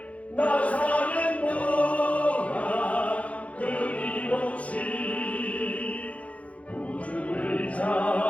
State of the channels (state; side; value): late; right; 0.065 ms